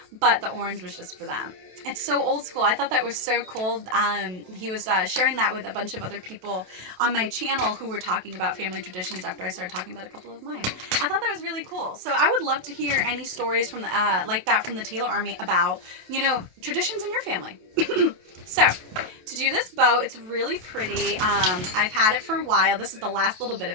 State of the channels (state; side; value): late; left; 27 ms